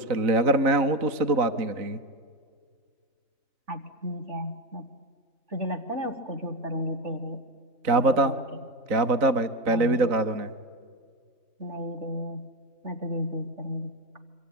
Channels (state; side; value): late; left; 3.9 ms